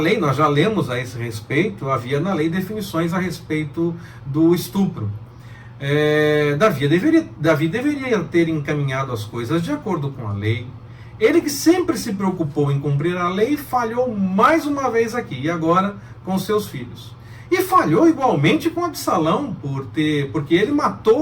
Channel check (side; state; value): both; identical; correlation 1.00